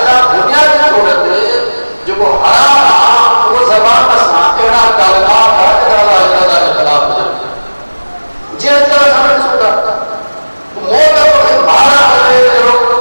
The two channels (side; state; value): both; inverted; correlation -1.00